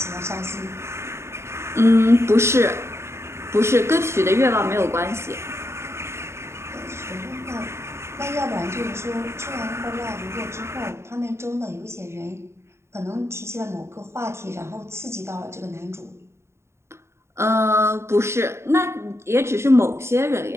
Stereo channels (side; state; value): left; late; 0.13 ms